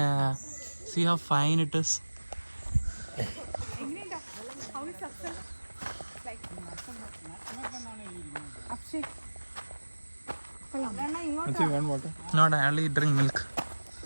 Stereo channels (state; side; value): inverted; both; correlation -1.00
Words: See how fine it is? Actually, one water. Not, I only drink milk.